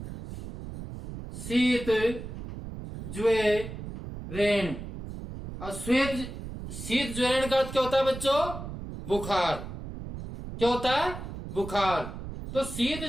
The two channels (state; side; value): noise; right; rumble, 9 dB below the sound